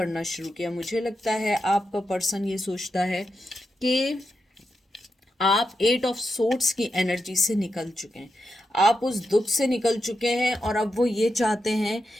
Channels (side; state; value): both; normal; correlation 0.87